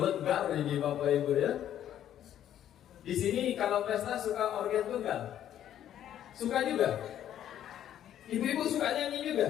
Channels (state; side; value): quieter; right; 10.9 dB